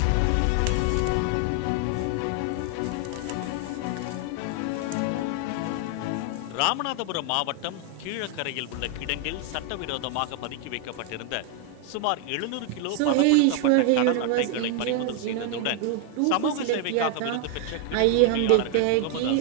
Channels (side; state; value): both; different; correlation 0.00